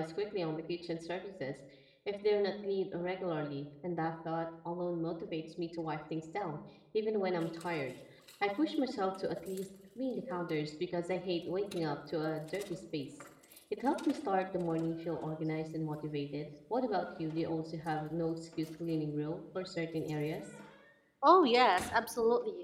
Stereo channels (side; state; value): both; identical; correlation 1.00